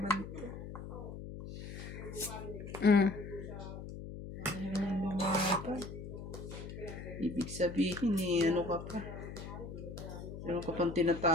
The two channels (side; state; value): left; noise; hum, 9 dB below the sound